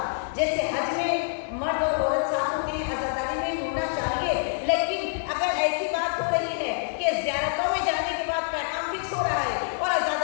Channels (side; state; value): right; silent; digital silence